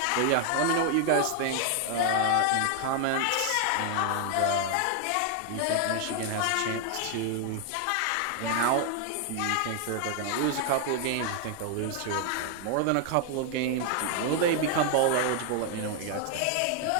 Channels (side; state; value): both; different; correlation 0.00